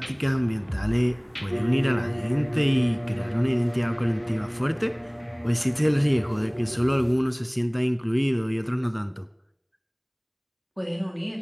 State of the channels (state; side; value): identical; both; correlation 1.00